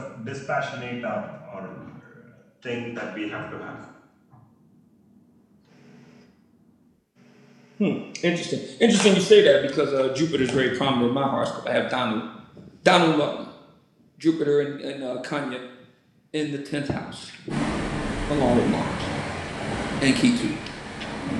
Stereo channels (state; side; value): identical; both; correlation 1.00